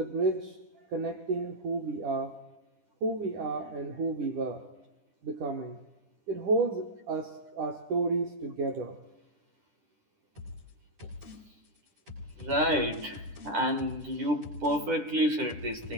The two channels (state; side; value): late; left; 10 ms